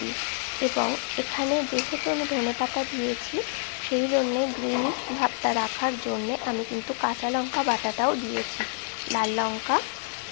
এবং এখানে যেহেতু আমি ধনেপাতা দিয়েছি, সেই জন্যে গ্রিন ভাবটা রাখার জন্যে আমি কিন্তু কাঁচা লঙ্কা বাটাটাও দিয়েছি, লাল লঙ্কা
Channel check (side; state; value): right; silent; digital silence